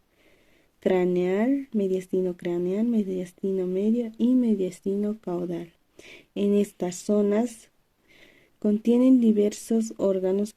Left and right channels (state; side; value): identical; both; correlation 1.00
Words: craneal, mediastino medio y mediastino caudal. En estas zonas contienen diversos órganos